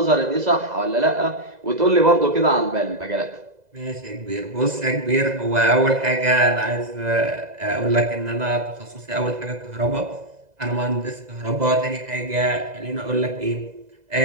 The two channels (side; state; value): left; late; 2.0 ms